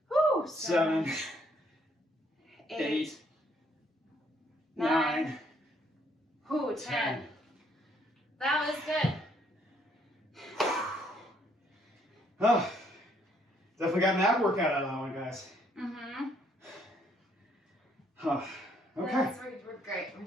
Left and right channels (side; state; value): both; normal; correlation 0.68